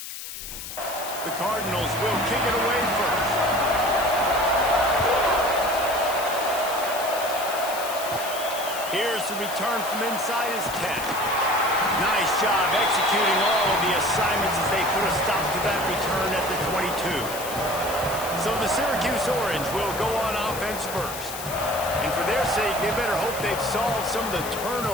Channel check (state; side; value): noise; left; hiss, 9 dB below the sound